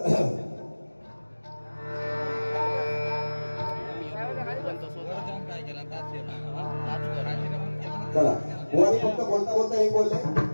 चला बुवानी फक्त बोलता हे बोलले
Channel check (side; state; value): both; inverted; correlation -1.00